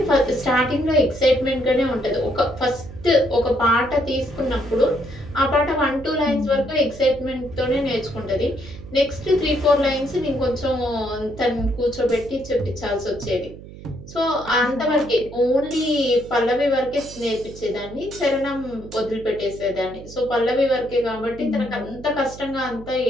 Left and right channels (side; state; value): right; noise; hum, 16 dB below the sound